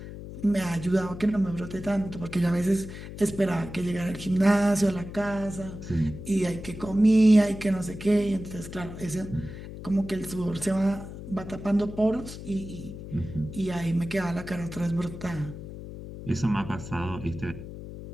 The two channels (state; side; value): noise; left; hum, 11 dB below the sound